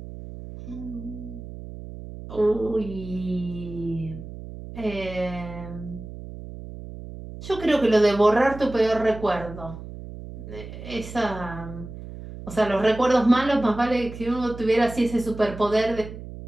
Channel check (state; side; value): noise; right; hum, 12 dB below the sound